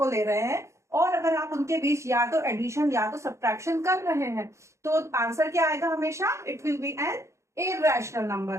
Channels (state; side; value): late; left; 0.14 ms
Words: ले रहे हैं और अगर आप उनके बीच या तो एडिशन या तो सब्ट्रैक्शन कर रहे हैं तो आंसर क्या आएगा? हमेशा it will be an irrational number.